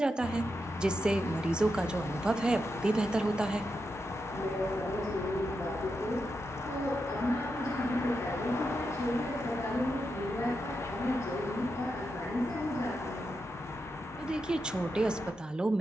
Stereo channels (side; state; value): both; normal; correlation 0.86